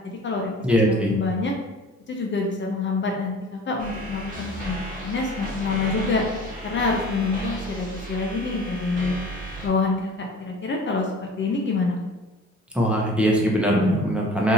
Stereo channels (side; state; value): both; normal; correlation 0.44